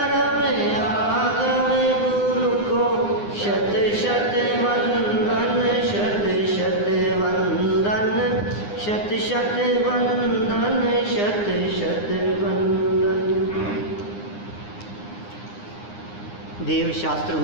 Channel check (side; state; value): right; late; 9.8 ms